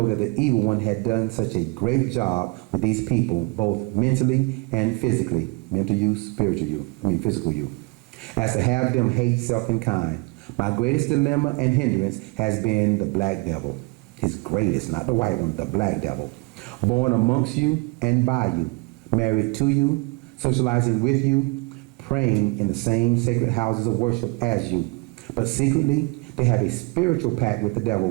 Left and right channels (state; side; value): quieter; left; 26.9 dB